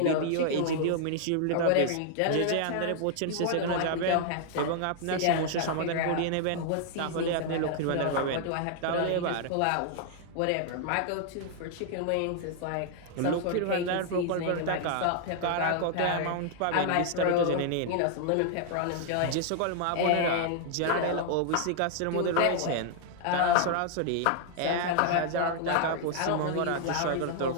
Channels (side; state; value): both; different; correlation 0.00